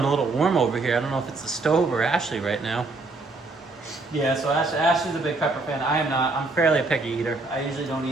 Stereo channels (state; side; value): quieter; left; 3.4 dB